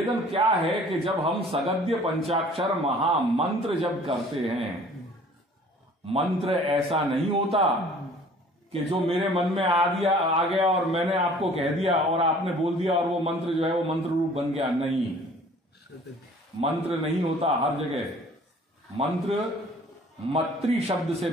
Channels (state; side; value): normal; both; correlation 0.51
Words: क्या है कि जब हम सगद्य पंचाक्षर महामंत्र जब करते हैं, मंत्र ऐसा नहीं होता कि जो मेरे मन में आ गया और मैंने आपको कह दिया और आपने बोल दिया और वो मंत्र जो है वो मंत्र रूप बन गया। नहीं, मंत्र नहीं होता हर जगह। मंत्र मत्री शब्द से